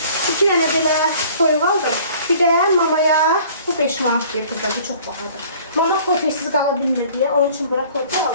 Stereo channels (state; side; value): inverted; both; correlation -0.51